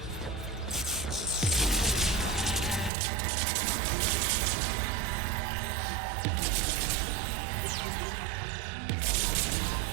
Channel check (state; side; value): drops out; left; at 2.9 s